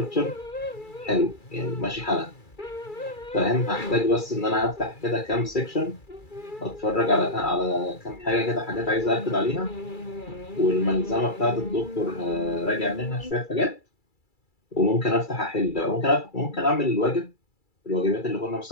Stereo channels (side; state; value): right; late; 2.3 ms